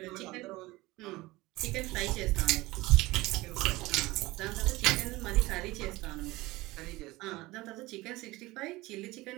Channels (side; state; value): left; quieter; 20.1 dB